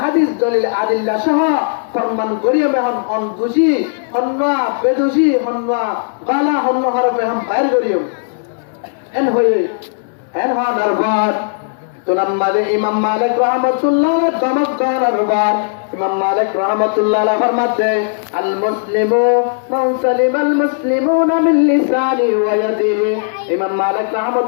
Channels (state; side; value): silent; right; digital silence